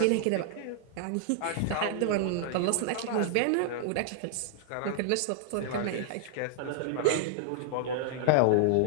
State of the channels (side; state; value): both; different; correlation -0.01